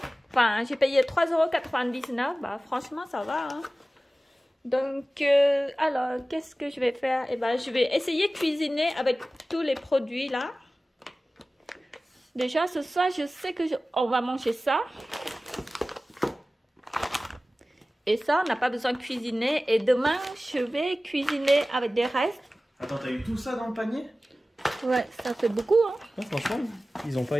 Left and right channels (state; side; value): normal; both; correlation 0.97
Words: Enfin, j'ai payé 3,99 €. Bah, franchement, ça va. Hein. Donc, alors, qu'est-ce que je vais faire? Eh ben, je vais essayer de cuisiner avec tous les produits là. Déjà, ce soir, je sais que on va manger ça. Et ça, on n'a pas besoin de cuisiner. Et demain, je vais cuisiner avec des restes. Attends, t'as eu tout ça dans le panier? Ouais, ça fait beaucoup, hein. Ouais, franchement, ils ont pas